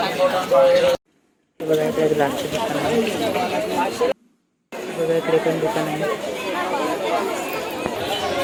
बघा इकडे ग्लासचे दुकान आहे. बघा इकडे पण दुकान आहे.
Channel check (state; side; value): identical; both; correlation 1.00